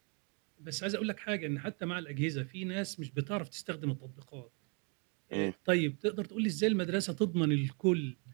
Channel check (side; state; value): left; quieter; 36.9 dB